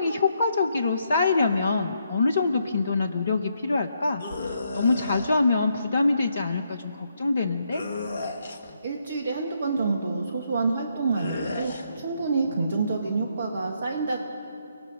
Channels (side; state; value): both; inverted; correlation -0.76